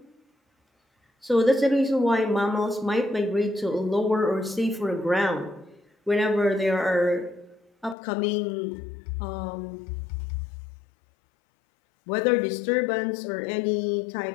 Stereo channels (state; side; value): drops out; right; at 8.0 s